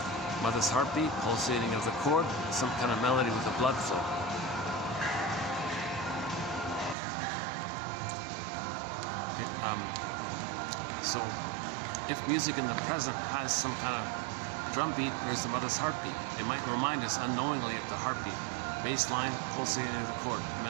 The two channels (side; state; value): left; drops out; at 7.0 s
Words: mother's heartbeat, pulsating of the cord, some kind of melody with the blood flow. Okay, so if music in the present has some kind of drum beat, there's the mother's heartbeat. It might remind us unknowingly of the heartbeat. Bass line, pulsating of the cord.